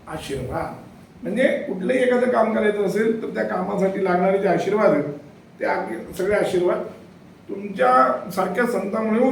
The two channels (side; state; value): both; identical; correlation 1.00